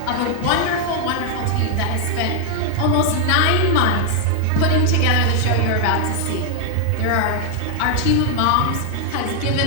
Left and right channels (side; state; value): both; different; correlation 0.00